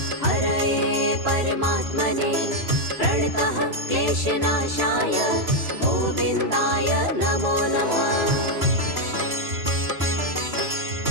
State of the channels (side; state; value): left; late; 3.0 ms